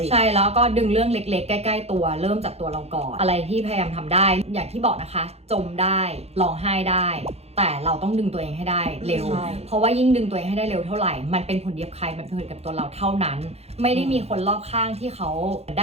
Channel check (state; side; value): late; left; 0.30 ms